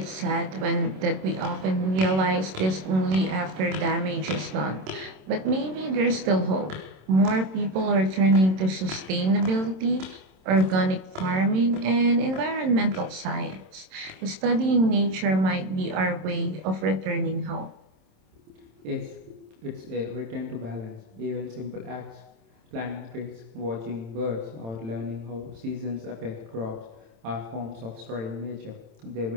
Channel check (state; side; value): late; left; 27 ms